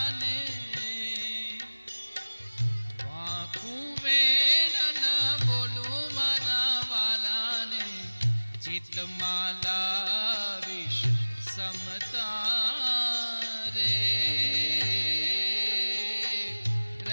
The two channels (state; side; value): inverted; both; correlation -1.00